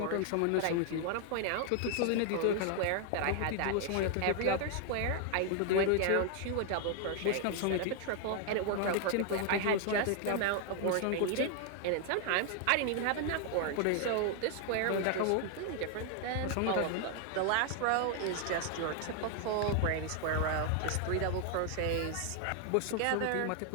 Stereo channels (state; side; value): different; both; correlation 0.00